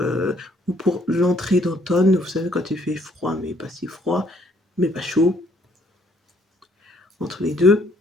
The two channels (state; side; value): normal; both; correlation 0.65